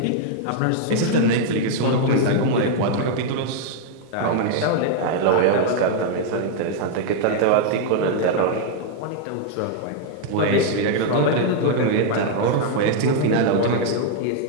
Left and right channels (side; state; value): both; different; correlation -0.01